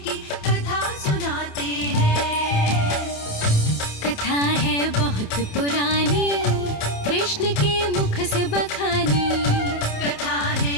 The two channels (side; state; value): right; late; 28 ms